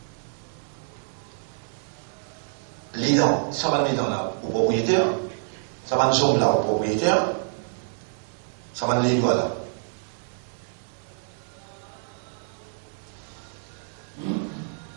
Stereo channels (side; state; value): left; silent; digital silence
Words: Les dents, ça va mettre dans là au propriétaire. Ça va nous sommes là au propriétaire. Ça va nous les là.